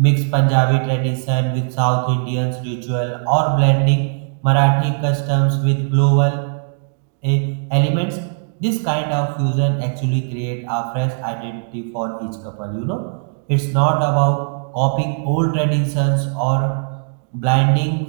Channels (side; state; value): left; silent; digital silence